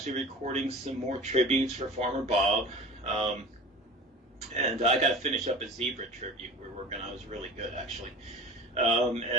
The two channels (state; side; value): normal; both; correlation 0.36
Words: recording some more tributes for Farmer Bob. And I got to finish up a zebra tribute we're working on. It was really good, actually.